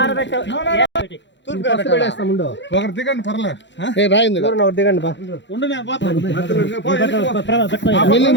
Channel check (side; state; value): right; late; 0.53 ms